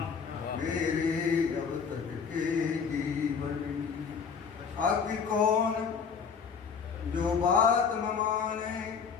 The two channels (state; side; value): quieter; right; 6.1 dB